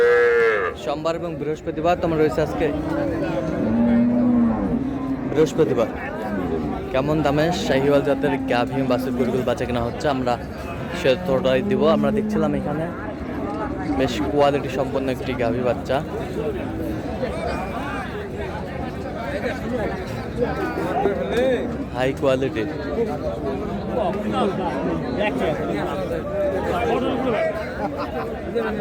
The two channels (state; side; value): identical; both; correlation 1.00